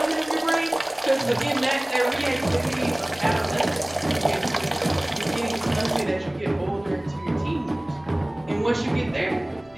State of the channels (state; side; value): noise; left; rumble, 27 dB below the sound